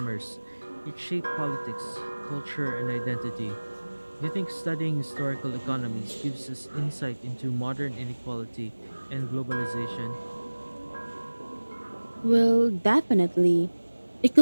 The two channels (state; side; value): inverted; both; correlation -1.00